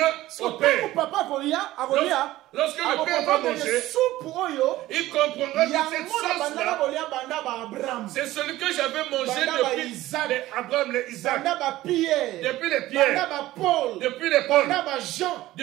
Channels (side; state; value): left; quieter; 16.1 dB